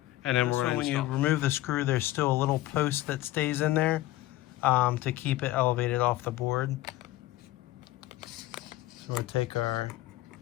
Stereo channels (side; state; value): right; quieter; 16.2 dB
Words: and then we're going to when you remove the screw, there's still a little post that stays in there to keep it elevated off the board. So we'll take our